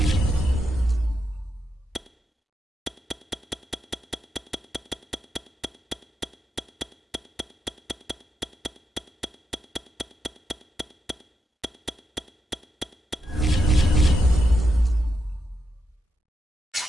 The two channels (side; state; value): both; normal; correlation 0.85